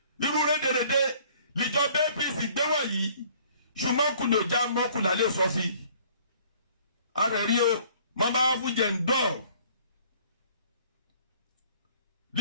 irú rédèrèdè níjọba APC gbé wọ̀nyí ṣùgbọ́n kùlò já mọ́kùnlá lè sọ sí ara rí o mọ́ bá fún jẹ̀ ń dọ̀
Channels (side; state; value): both; inverted; correlation -0.56